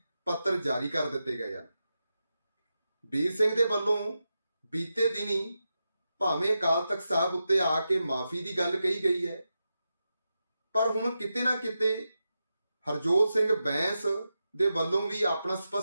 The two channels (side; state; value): both; inverted; correlation -0.89